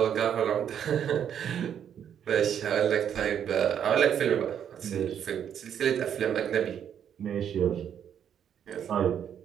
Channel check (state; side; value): quieter; left; 8.9 dB